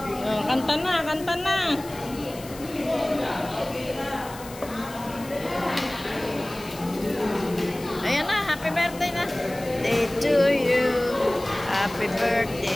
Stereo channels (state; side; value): noise; left; hiss, 17 dB below the sound